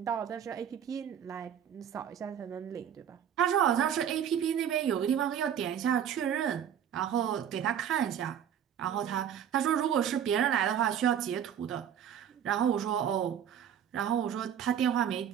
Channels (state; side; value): quieter; left; 9.1 dB